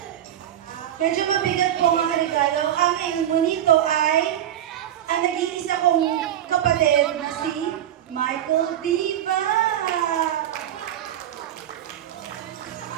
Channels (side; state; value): left; quieter; 11.2 dB